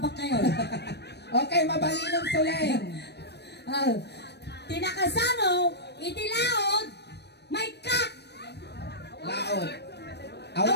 kayo? Okay, mabaling ng Suleng. Tinakasano, itilaod, may kak. Laod.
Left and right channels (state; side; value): late; right; 0.49 ms